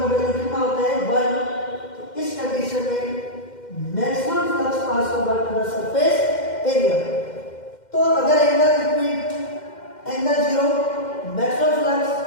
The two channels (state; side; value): late; right; 2.1 ms